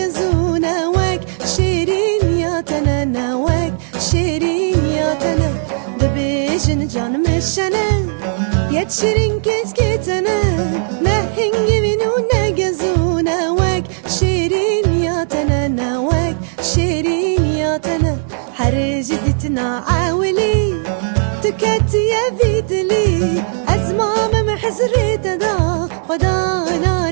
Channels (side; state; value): left; silent; digital silence